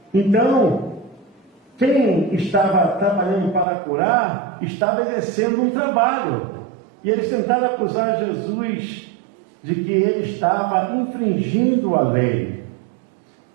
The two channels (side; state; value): left; drops out; at 3.7 s